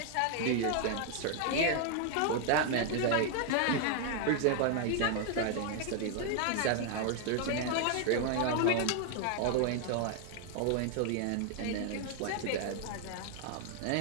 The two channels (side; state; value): both; different; correlation 0.00